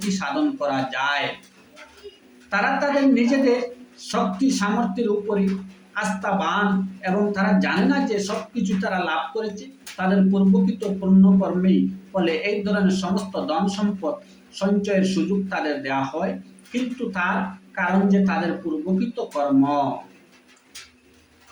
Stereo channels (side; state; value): both; identical; correlation 1.00